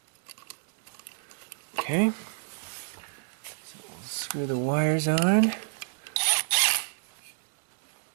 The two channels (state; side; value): silent; left; 58 dB below the other